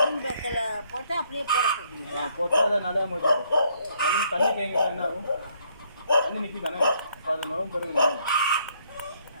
பேக்கில் போட்டு அப்படியே போட சொல்றீங்களா? போட்டு அதை நிறையா முடிச்சு தண்ணி தேங்கினா என்ன ஆகும்? தண்ணி நிற்கி தானே அப்போ அது நுழம்பு பெருகுதானே.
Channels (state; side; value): inverted; both; correlation -0.69